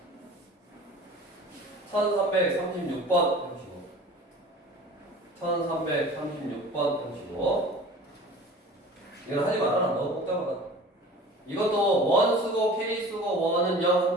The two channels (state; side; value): normal; both; correlation 0.42